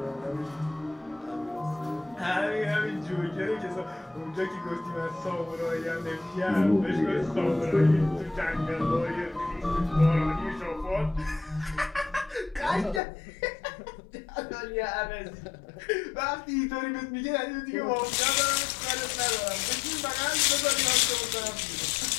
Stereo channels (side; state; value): right; drops out; at 13.0 s